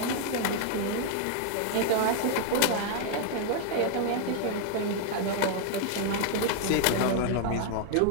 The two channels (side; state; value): both; different; correlation 0.00